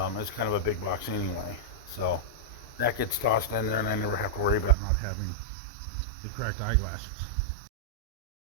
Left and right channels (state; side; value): drops out; left; at 4.8 s